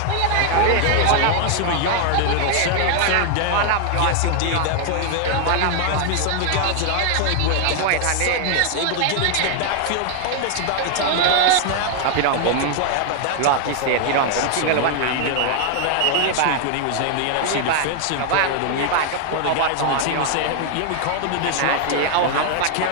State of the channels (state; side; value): different; both; correlation 0.00